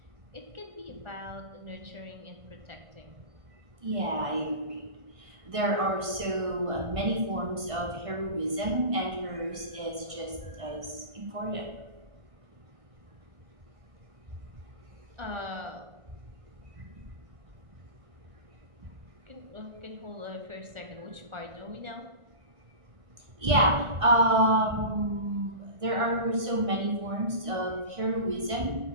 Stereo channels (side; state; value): left; late; 1.5 ms